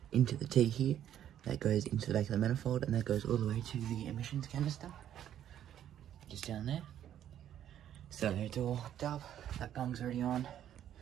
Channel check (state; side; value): quieter; left; 10.7 dB